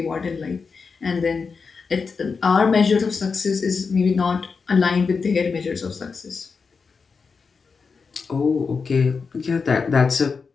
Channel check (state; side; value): quieter; right; 5.1 dB